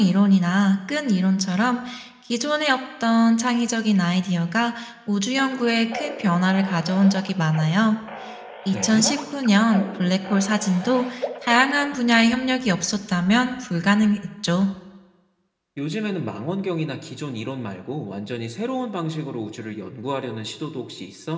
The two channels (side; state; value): both; identical; correlation 1.00